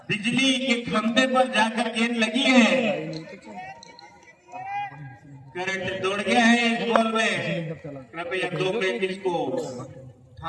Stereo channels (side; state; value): both; identical; correlation 1.00